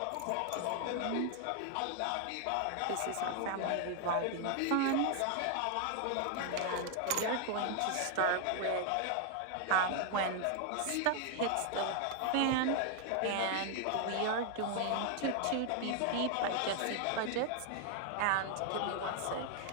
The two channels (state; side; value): different; both; correlation 0.00